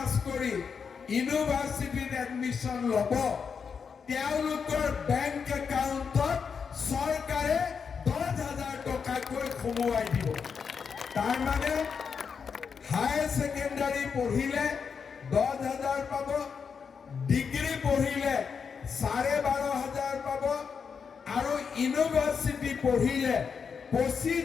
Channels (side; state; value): right; quieter; 6.1 dB